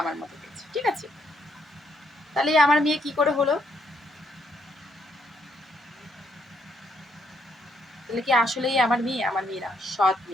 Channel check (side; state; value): both; normal; correlation 0.73